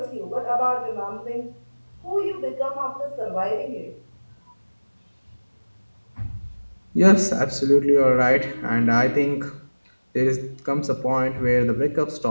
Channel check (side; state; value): both; inverted; correlation -1.00